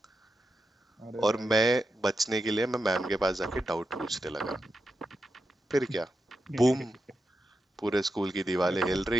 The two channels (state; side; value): normal; both; correlation 0.88